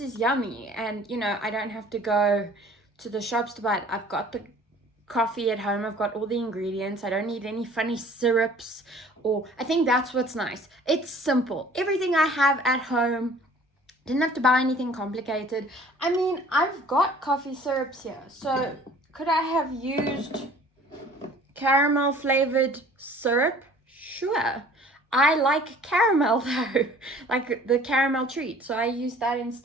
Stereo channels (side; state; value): both; normal; correlation 0.51